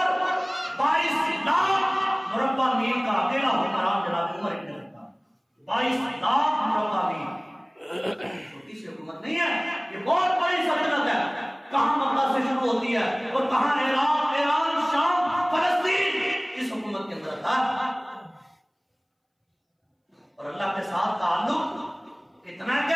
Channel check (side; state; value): both; identical; correlation 1.00